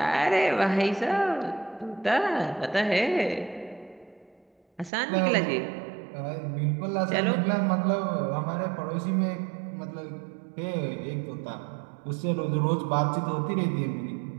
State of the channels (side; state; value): left; drops out; at 4.9 s